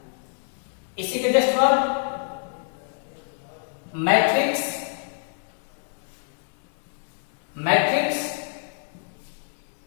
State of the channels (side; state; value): right; silent; digital silence